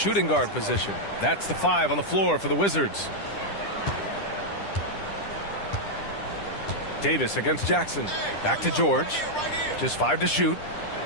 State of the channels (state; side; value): late; right; 10 ms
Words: guard position. That's the 5 on the floor for the Wizards. Davis against Jackson. Back to George. Just 5 to shoot.